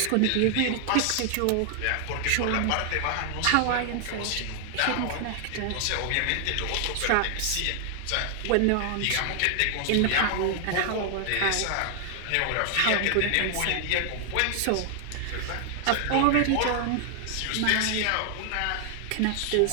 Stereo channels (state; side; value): different; both; correlation 0.00